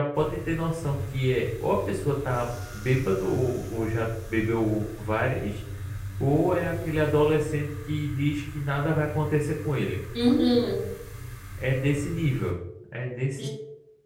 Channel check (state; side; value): identical; both; correlation 1.00